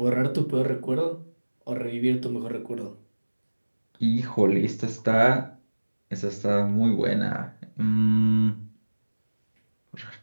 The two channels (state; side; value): inverted; both; correlation -1.00